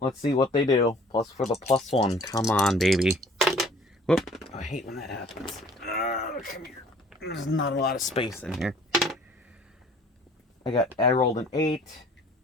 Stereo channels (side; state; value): both; normal; correlation 0.53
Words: see what they do. Plus for the +1. Come on, baby. Whoop. I hate when that happens. Come here. There's not a lot of space in here. I rolled an 8.